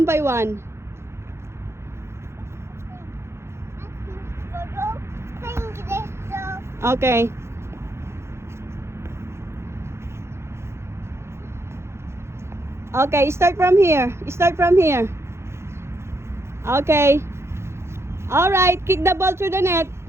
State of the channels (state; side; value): late; left; 0.13 ms